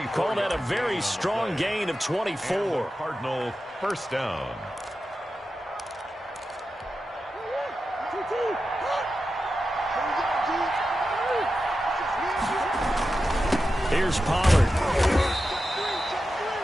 Call that a very strong gain of 24. Cardinal first down. Here's Pollard.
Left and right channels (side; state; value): both; normal; correlation 0.91